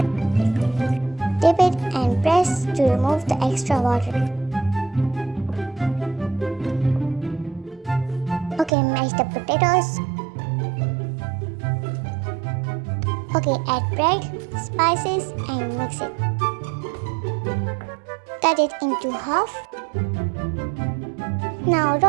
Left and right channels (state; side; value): drops out; left; at 8.7 s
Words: Dip it and press to remove the extra water. Okay, mash the potatoes. Okay, add bread, spices and mix it. Cut it into half. Now